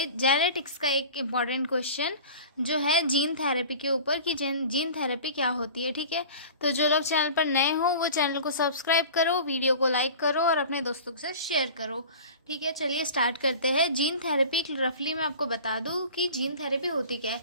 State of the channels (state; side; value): inverted; both; correlation -0.39